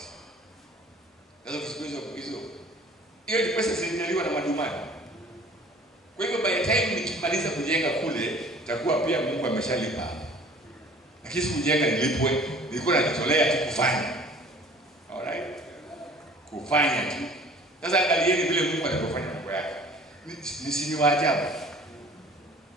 Sasa kusikizo hiyo ni pesa zilinyaliwa na madumani. Kwa hivyo by the time nikimaliza kujenga kule itakuwa pia Mungu ameshalipa. Lakini kujenga nilipwe, nilikuwa najitolea tu kufanya. Alright? Kufanya tu. Sasa angalieni vile Mungu anapofanya mambo yake. Ni waajabu.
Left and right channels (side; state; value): both; normal; correlation 0.49